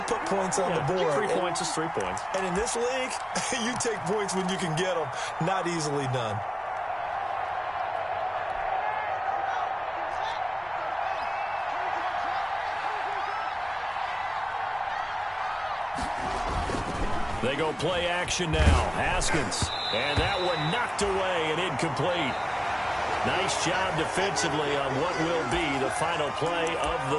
put points on the board. 3 points is 3 points. And in this league, you take points when you can get them. Not easily done. They go play action now. Haskins. And that one knocked away and incomplete. Nice job defensively on what will be the final play of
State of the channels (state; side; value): identical; both; correlation 1.00